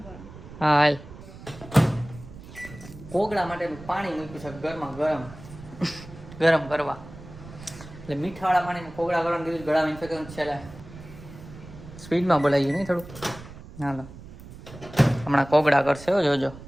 કરો. હા હાલ. કોગળા માટે પાણી મૂક્યું છે ઘરમાં ગરમ કરવા. એટલે મીઠાવાળા પાણીમાં કોગળા કરવાનું કીધું. ગળામાં ઇન્ફેક્શન છે. સ્પીડમાં બોલાવી નહીં થોડું. હાલો હમણાં કોગળા કરશે હો જોજો.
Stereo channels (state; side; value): noise; right; rumble, 16 dB below the sound